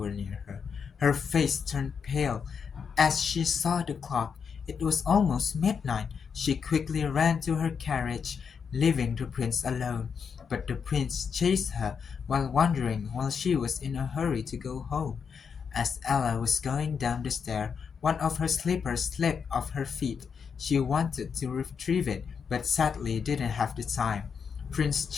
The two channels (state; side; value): quieter; right; 6.4 dB